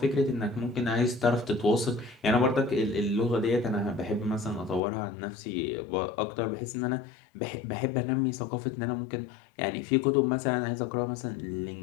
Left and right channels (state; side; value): drops out; right; at 4.8 s